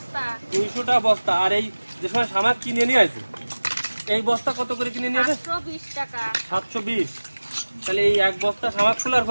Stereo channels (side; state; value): both; inverted; correlation -1.00